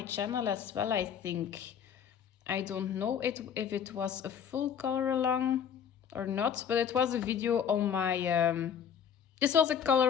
channel as well, I think. I don't know if it was a full color along or not, but it was a video on my this was a color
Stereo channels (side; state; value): right; quieter; 8.1 dB